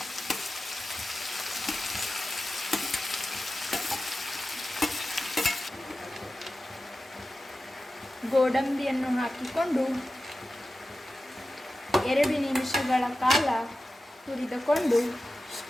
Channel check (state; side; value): normal; both; correlation 0.94